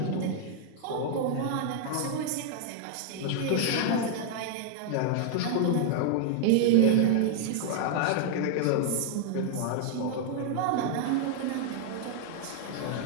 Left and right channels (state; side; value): different; both; correlation -0.01